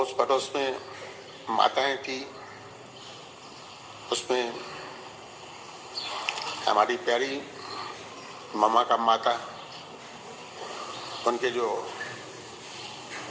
पड़ोस में माताएं थी, उसमें हमारी प्यारी मामा का माता, उनके जो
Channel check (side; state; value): both; identical; correlation 1.00